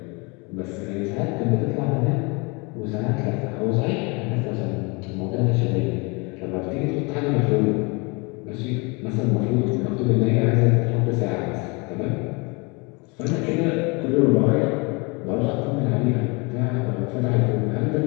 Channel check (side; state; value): right; quieter; 29.2 dB